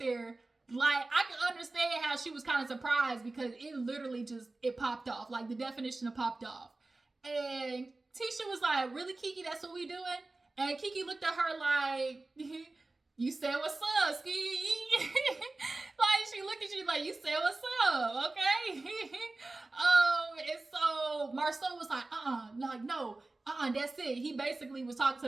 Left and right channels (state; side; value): quieter; left; 3.2 dB